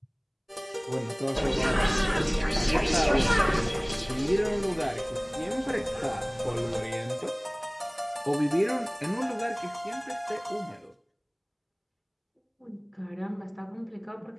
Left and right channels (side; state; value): both; identical; correlation 1.00